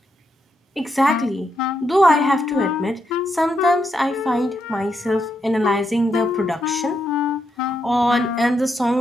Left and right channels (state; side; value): normal; both; correlation 0.81